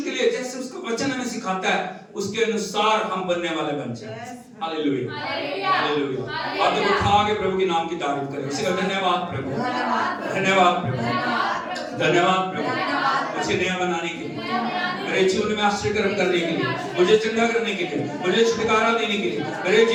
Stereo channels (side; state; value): both; identical; correlation 1.00